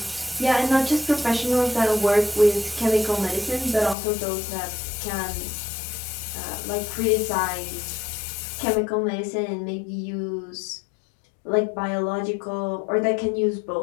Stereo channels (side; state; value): right; drops out; at 4.0 s